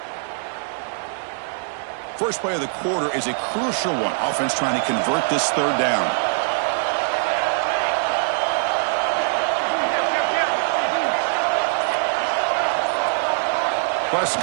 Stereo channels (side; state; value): left; silent; digital silence